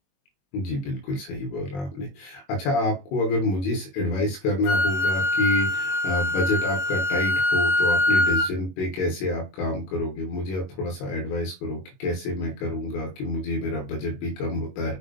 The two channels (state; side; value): late; right; 21 ms